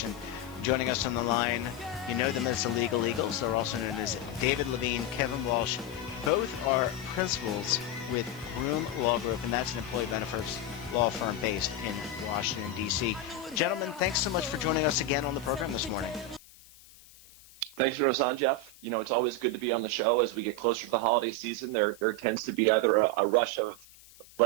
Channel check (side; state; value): left; noise; hiss, 23 dB below the sound